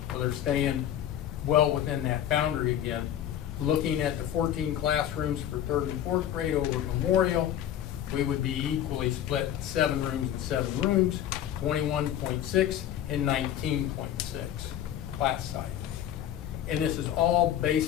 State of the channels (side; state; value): right; quieter; 10.9 dB